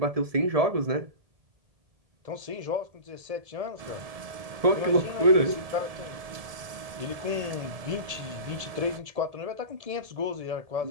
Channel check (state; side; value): late; left; 1.7 ms